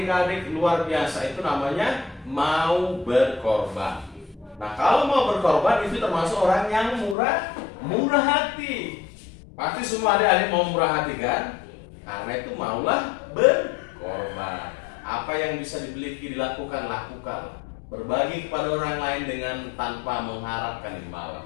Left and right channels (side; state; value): right; drops out; at 7.2 s